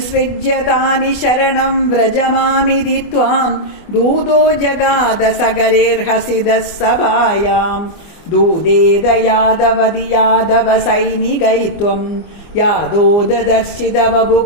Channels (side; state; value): right; late; 25 ms